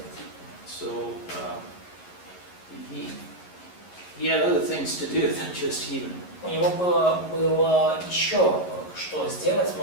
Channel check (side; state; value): right; late; 11 ms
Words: So he had other things to do than just healing. У него было еще что сделать,